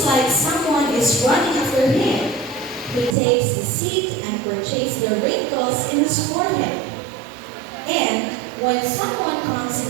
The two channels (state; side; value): drops out; left; at 3.2 s